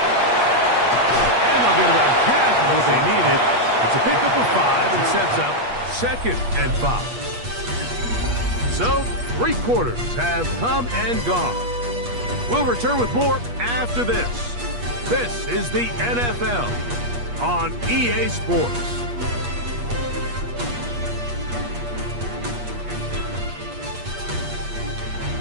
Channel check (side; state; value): left; late; 8.4 ms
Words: And they'll get about half of what they needed. It's a pickup of 5 and sets up 2nd and 5. So, 3 quarters have come and gone. We'll return with more after this. This is the NFL on EA Sports.